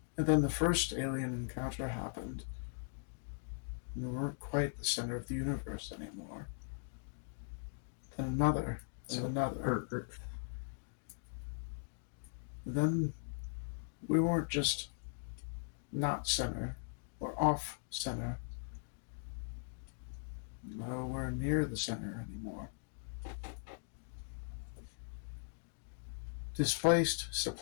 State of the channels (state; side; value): silent; right; digital silence